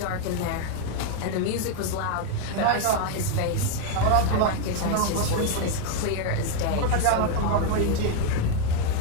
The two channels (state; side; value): different; both; correlation 0.01